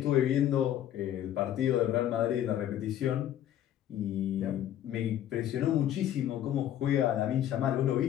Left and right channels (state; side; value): quieter; right; 11.4 dB